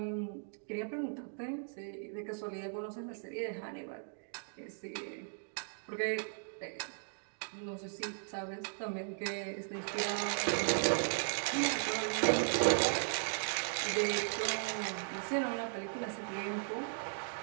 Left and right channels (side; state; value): left; silent; digital silence